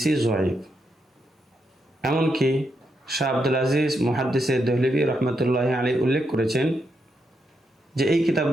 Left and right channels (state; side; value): normal; both; correlation 0.82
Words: জয়ীফ। এমনকি শাহ আব্দুল আজিজ মুহাদ্দিসে দেহলভী রহমতুল্লাহ আলাইহি উল্লেখ করেছেন যে এই